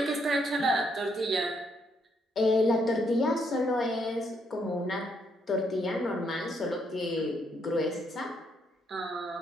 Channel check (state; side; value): normal; both; correlation 0.74